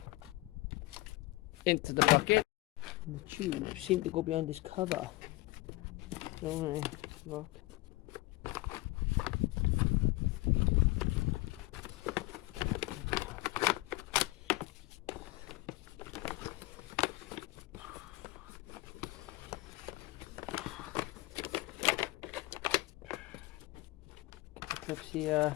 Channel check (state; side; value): quieter; right; 19.6 dB